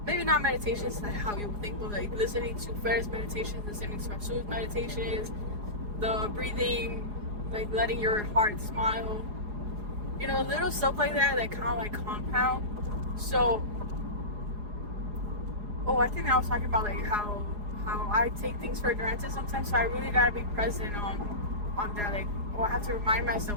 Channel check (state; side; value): late; left; 4.8 ms